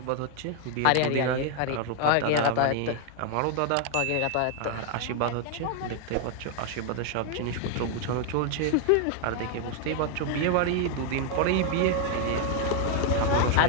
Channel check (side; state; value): both; different; correlation 0.00